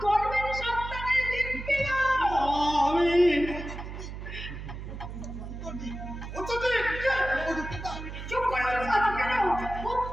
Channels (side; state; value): right; noise; hum, 9 dB below the sound